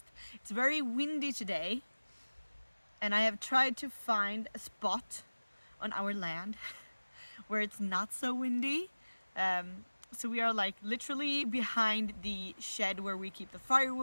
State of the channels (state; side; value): inverted; both; correlation -1.00